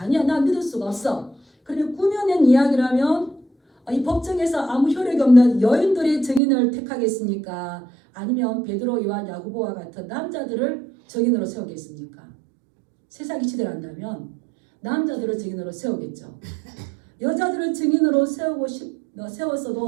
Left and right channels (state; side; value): drops out; left; at 6.4 s